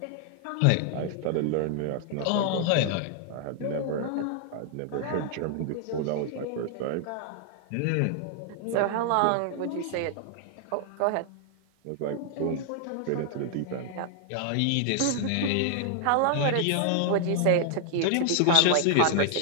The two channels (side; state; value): both; different; correlation 0.00